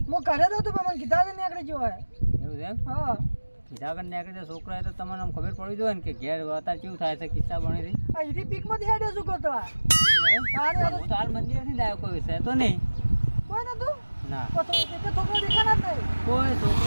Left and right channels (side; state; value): both; inverted; correlation -1.00